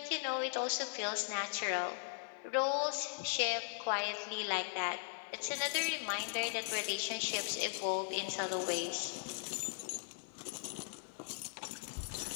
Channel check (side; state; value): right; silent; 52 dB below the other